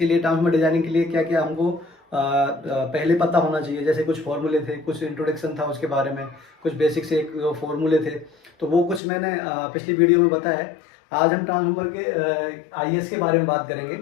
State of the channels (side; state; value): right; drops out; at 9.0 s